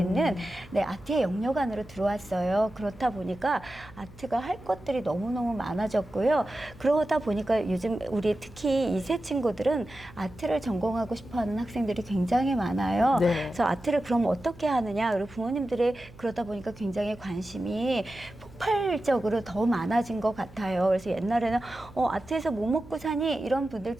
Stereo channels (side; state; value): right; noise; hum, 21 dB below the sound